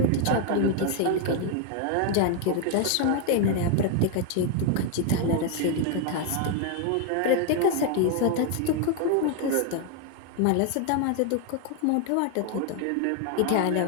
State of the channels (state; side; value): different; both; correlation 0.01